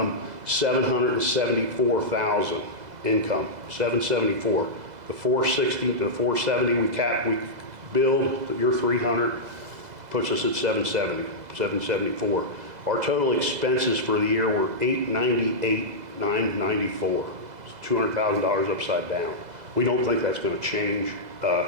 $774,000 income, 774. The 460 to the 470 we billed, your 300 puts us at 774. Our total expenses for the year were $898,994. It's $200,000 upside down. We don't think that's going to change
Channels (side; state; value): left; late; 2.0 ms